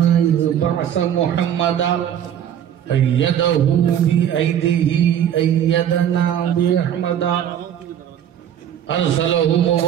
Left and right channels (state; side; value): quieter; left; 9.9 dB